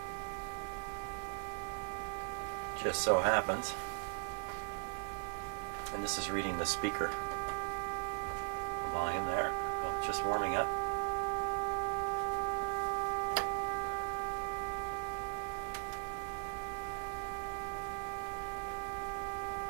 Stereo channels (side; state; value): left; silent; digital silence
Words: Just so happens. And this is reading the speaker volume there. Oh, just warming up.